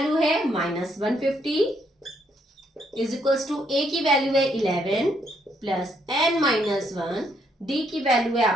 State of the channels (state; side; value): normal; both; correlation 0.73